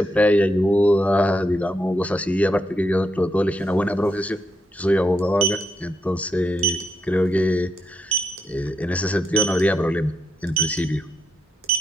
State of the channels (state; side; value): normal; both; correlation 0.81